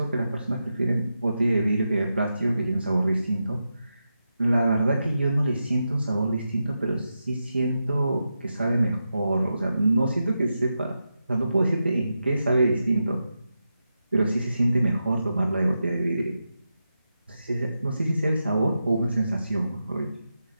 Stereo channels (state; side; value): inverted; both; correlation -0.88